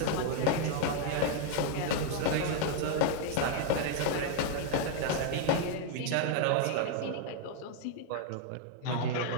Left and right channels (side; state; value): both; different; correlation 0.00